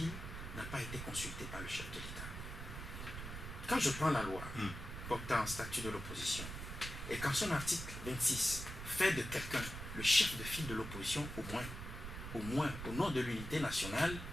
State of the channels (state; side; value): noise; right; rumble, 8 dB below the sound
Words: n'ont pas été consultées par le chef de l'État. Quand je prends la loi portant statut de l'opposition, et quand son article 26 fait de quelqu'un le chef de file de l'opposition, au moins, au nom de l'unité nationale,